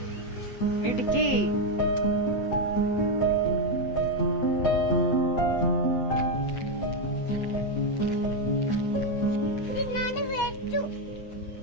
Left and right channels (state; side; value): late; right; 8.2 ms